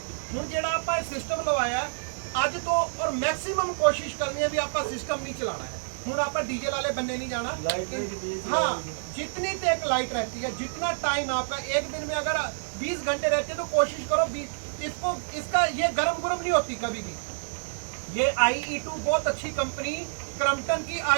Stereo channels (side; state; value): left; silent; digital silence